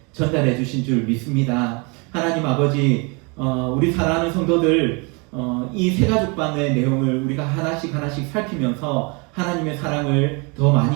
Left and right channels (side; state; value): left; quieter; 30.9 dB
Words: 전달해 주신 줄 믿습니다. 하나님 아버지, 우리 사랑하는 성도들, 이 세가족반의 내용을 우리가 하나씩 살피면서 하나님의 사랑을 더